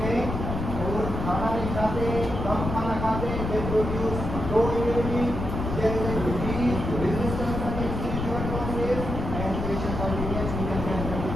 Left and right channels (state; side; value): noise; left; rumble, 4 dB below the sound